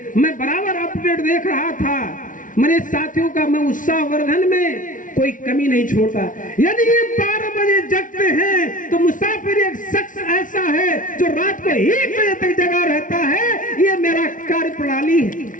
मैं बराबर अपडेट देख रहा था मेरे साथियों का। मैं उत्साहवर्धन में कोई कमी नहीं छोड़ता। यदि ये 12 बजे जगते हैं तो मुसाफिर एक शख्स ऐसा है जो रात को 1 बजे तक जगा रहता है। ये मेरा कार्य प्रणाली है।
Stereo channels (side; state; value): right; late; 0.38 ms